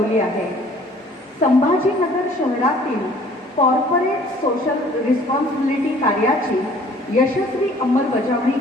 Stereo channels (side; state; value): both; normal; correlation 0.54